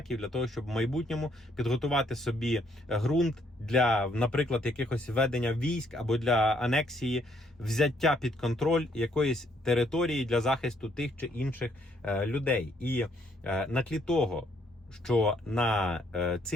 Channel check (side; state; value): both; normal; correlation 0.69